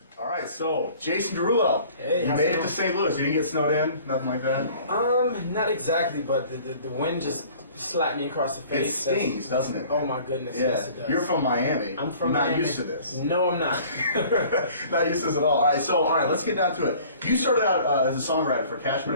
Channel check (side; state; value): both; inverted; correlation -0.50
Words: All right, so Jason Derulo, Hey, you made it to St. Louis. You didn't get snowed in, nothing like that. Not exactly, but the wind just slapped me across the It face. stings, doesn't it? Oh my goodness, Yeah. yes it does. You're from Miami. I'm from You're not Miami. used to this. No, I'm not. Not used to this at all. All right, let's get down to it. You started out as a songwriter for Cash